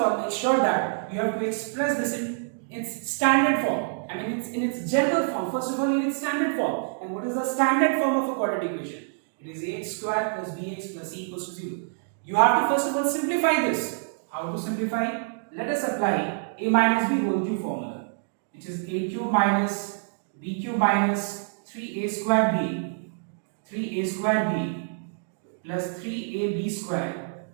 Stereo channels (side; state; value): left; silent; digital silence